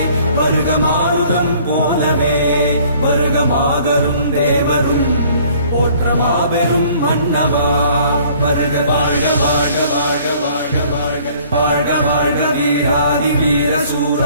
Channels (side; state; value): both; inverted; correlation -0.56